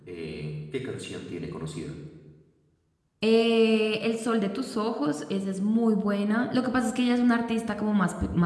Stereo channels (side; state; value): both; identical; correlation 1.00